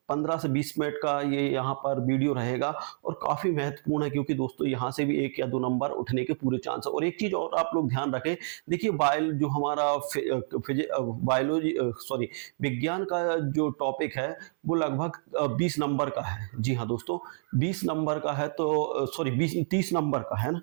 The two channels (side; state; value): left; silent; 59 dB below the other